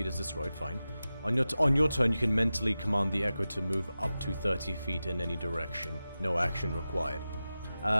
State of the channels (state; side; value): inverted; both; correlation -0.94